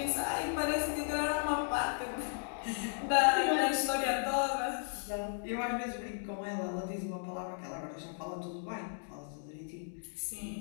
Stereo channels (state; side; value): silent; right; digital silence